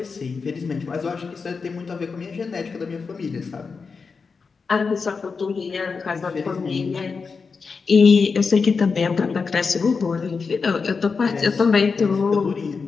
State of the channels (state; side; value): quieter; right; 5.0 dB